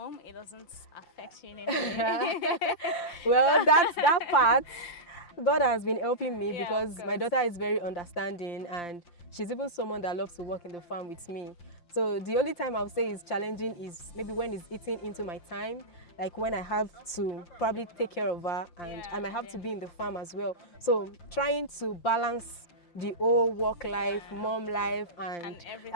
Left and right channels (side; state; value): right; late; 5.8 ms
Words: it doesn't affect you in any way. Well, that's that part. God has been helping me Yeah, because my daughter is very understanding, and she's even someone that loves to work in the farm with me. So the only time I would say is challenging is maybe when it's eating into my time, like when I have to probably take care of her, and I might have to be in the farm as well. So trying to balance the whole work life, mom life, and